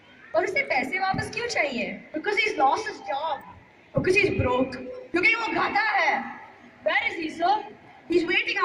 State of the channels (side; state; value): both; identical; correlation 1.00